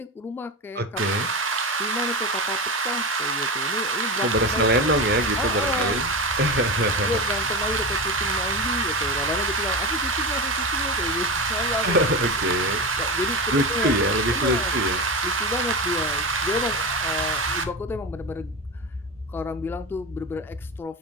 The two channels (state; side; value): normal; both; correlation 0.22